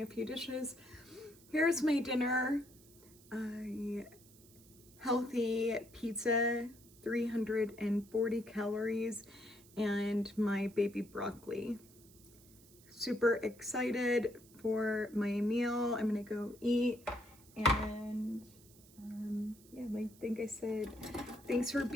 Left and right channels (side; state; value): right; noise; hiss, 24 dB below the sound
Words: a few dishes. Here's my dinner. Healthy pizza, 340 calories, and my baby broccoli. Super excited for my meal. I'm gonna go eat, and yeah, I think I said thanks for